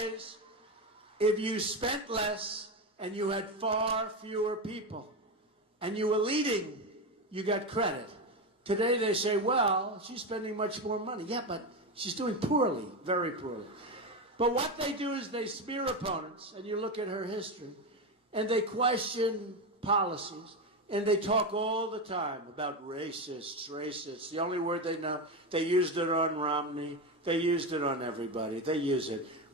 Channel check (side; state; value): both; normal; correlation 0.15